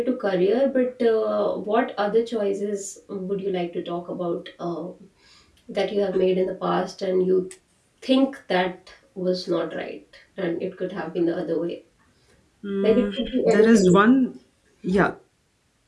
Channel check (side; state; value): both; identical; correlation 1.00